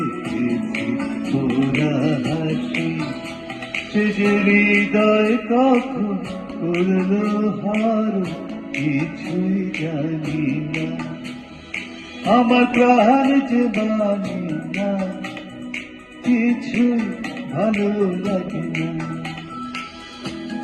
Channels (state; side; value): identical; both; correlation 1.00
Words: তোরা হাসি। সে যে হৃদয় কখন করলো হার, কিছুই জানি না, আমার প্রাণ যে মানি না, কিছুই ভালো লাগে না।